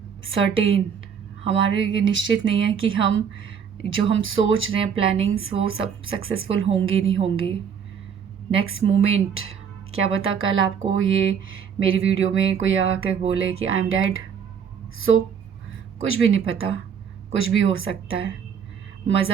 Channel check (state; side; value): quieter; left; 7.3 dB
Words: certain. हमारे ये निश्चित नहीं है कि हम जो हम सोच रहे हैं प्लानिंग्स वो सब सक्सेसफुल होंगी नहीं होंगी। नेक्स्ट मोमेंट क्या पता कल आपको ये मेरी वीडियो में कोई आकर बोले कि आई एम डेड। सो कुछ भी नहीं पता, कुछ भी हो सकता है।